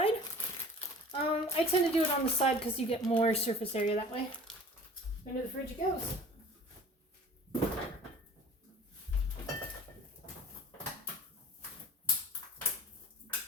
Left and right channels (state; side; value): normal; both; correlation 0.45